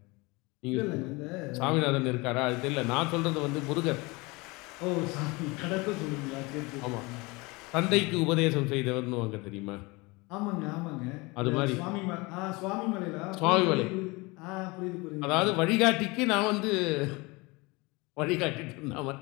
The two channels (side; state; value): right; quieter; 25.1 dB